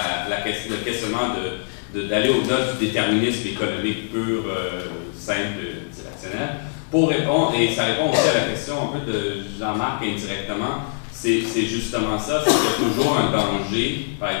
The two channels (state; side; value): silent; right; 64 dB below the other